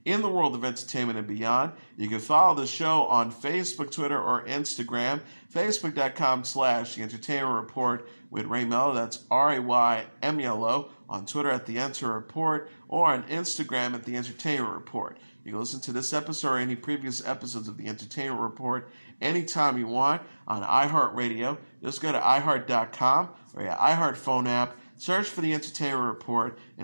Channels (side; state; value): both; inverted; correlation -1.00